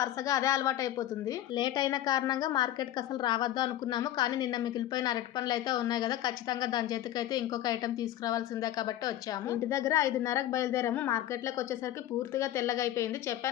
అదే అలవాటు అయిపోతుంది. లేట్ అయిన కారణంగా మార్కెట్కి అసలు రావద్దు అనుకున్నాము, కానీ నిన్న మిగిలిపోయిన అరటి పండ్లు అయితే ఉన్నాయి కదా, ఖచ్చితంగా దాని చేతికి అయితే ఇంకొక ఐటెం తీసుకురావాల్సిందే కాబట్టి వచ్చాము. ఇంటి దగ్గర 5:30కి బయలుదేరాము. మార్కెట్లోకి వచ్చేసరికి పూర్తిగా తెల్లగా అయిపోయింది.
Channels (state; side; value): quieter; right; 13.1 dB